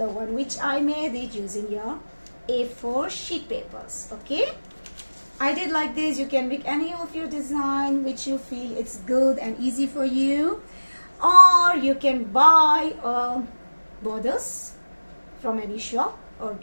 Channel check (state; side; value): inverted; both; correlation -1.00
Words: one which I made it using your A4 sheet papers. Okay, I did like this. You can make any of your design which you feel it's good and easy for you, or you can buy borders from any shop or